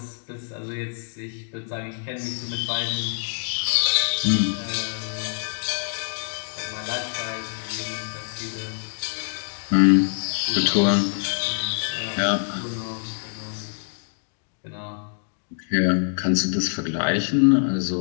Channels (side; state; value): right; silent; digital silence